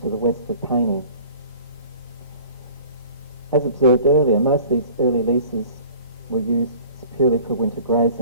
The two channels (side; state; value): both; inverted; correlation -0.47